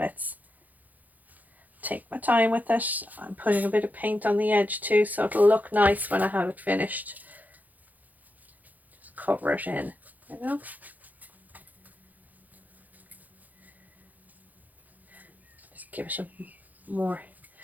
Take my time with it. I'm putting a bit of paint on the edge too, so it'll look nice when I have it finished. Just cover it in, you know. Just give it a more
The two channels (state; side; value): late; left; 0.081 ms